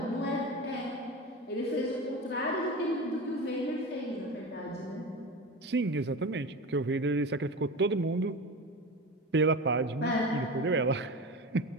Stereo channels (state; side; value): normal; both; correlation 0.27